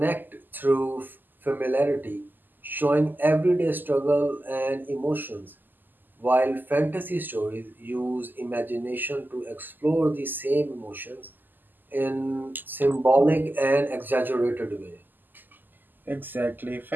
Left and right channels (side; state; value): left; late; 0.089 ms